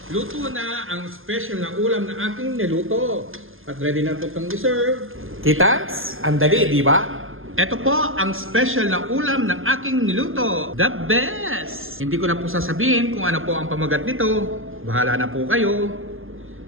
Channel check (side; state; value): left; late; 0.59 ms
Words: Luto na ang special na ulam na aking niluto. At ready na itong i-serve. Kitans, ang dali, di ba? Ito po ang special na ulam ng aking niluto. The best! Hindi ko na po sasabihin kung ano po ang pamagat nito. Bahala na po kayo.